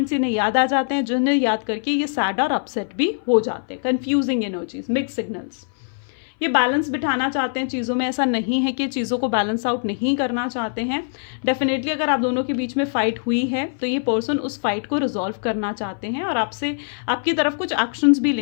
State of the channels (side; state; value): right; silent; 60 dB below the other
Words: इन्हें याद आ जाते हैं जिन्हें याद करके ये सैड और अपसेट भी हो जाते हैं। Confusing energies, mix signals. ये बैलेंस बिठाना चाहते हैं चीज़ों में, ऐसा नहीं है कि चीज़ों को बैलेंस आउट नहीं करना चाहते हैं। डेफिनेटली अगर आप दोनों के बीच में फाइट हुई है तो ये पर्सन उस फाइट को रिजॉल्व करना चाहते हैं और आपसे, आपकी तरफ कुछ एक्शंस भी